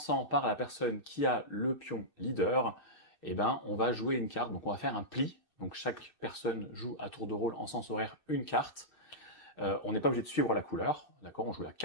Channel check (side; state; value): right; late; 2.6 ms